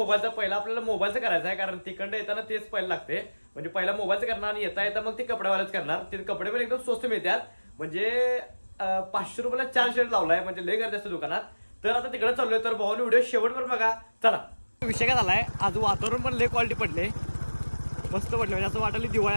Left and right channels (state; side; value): inverted; both; correlation -1.00